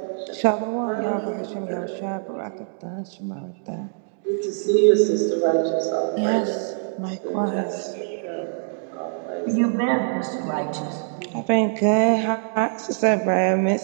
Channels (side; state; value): left; silent; digital silence